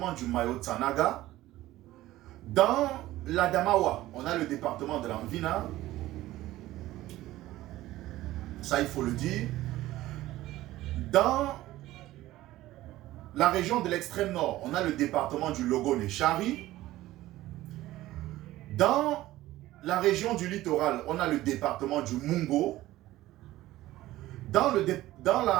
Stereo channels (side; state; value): left; quieter; 16.0 dB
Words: du Mayo Tsanaga. Dans l'Adamawa, on a le département de l'Anvina. Ça, il faut le dire. Dans la région de l'extrême nord, on a le département du Logone-Chari. Dans la région du littoral, on a le département du Mungo. Dans